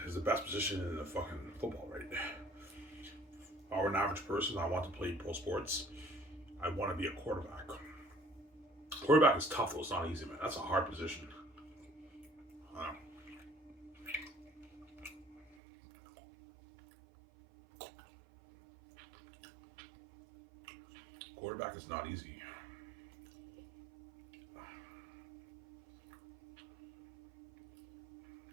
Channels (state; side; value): drops out; left; at 15.6 s